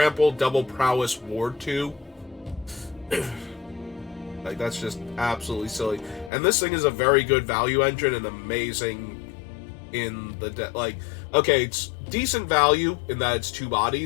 Double Prowess, Ward 2. Like, that's just absolutely silly. And this thing is a very good value engine and amazing in the... like, okay, it's decent value in that it's 2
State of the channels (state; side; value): drops out; right; at 6.3 s